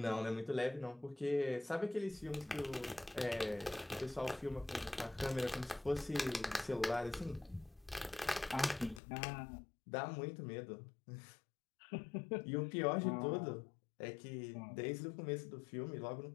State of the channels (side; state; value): right; drops out; at 9.0 s